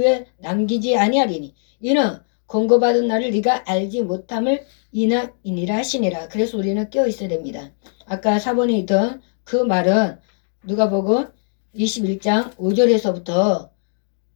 남기지 아니하리니 이는 권고받은 날을 네가 알지 못함을 이니라 하시니라. 그래서 우리는 깨어 있어야 됩니다. 아까 4번에 있던 그 말은 누가복음 21장 5절에서부터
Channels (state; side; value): silent; right; digital silence